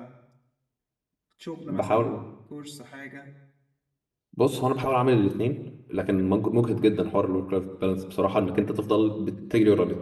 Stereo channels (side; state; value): both; identical; correlation 1.00